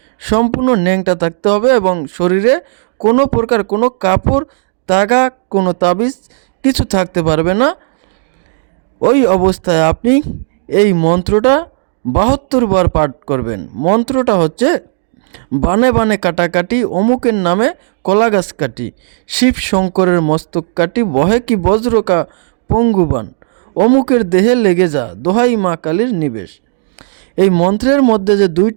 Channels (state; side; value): silent; left; digital silence